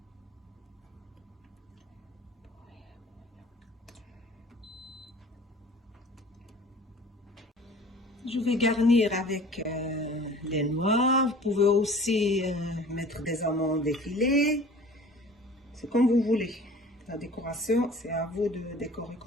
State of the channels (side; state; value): both; normal; correlation 0.46